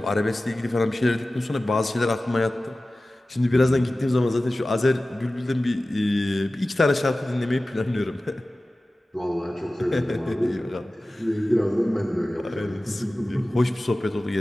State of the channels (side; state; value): both; normal; correlation 0.96